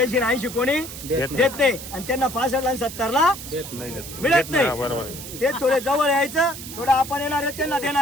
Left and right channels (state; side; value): noise; right; hiss, 11 dB below the sound